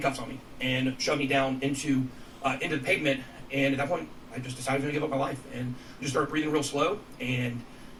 on me and shoved me down into the pavement. And at that point, I just decided to give up my life and just started breathing real slow and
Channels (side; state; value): both; identical; correlation 1.00